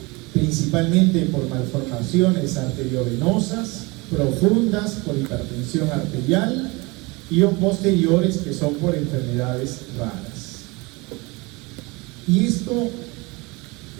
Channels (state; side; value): quieter; left; 25.4 dB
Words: principalmente por malformaciones arteriovenosas, profundas por hipertensión arterial y o posteriores que son por enfermedades raras. Y esto